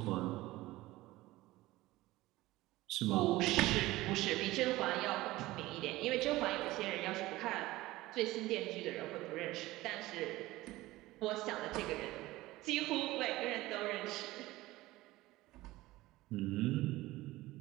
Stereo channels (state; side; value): quieter; left; 18.2 dB